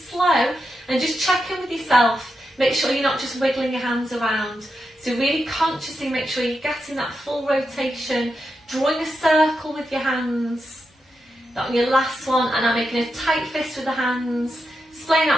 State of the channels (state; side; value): normal; both; correlation 0.87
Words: slow, and just check in with yourself. Make sure you're not just wiggling your hands around. So really consciously make sure you're getting that full rotation, drawing a circle with your hands. That on your last one, and I'm making a tight fist with the hands, splaying